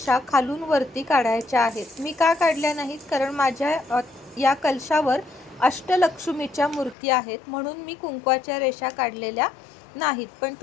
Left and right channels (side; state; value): right; drops out; at 7.0 s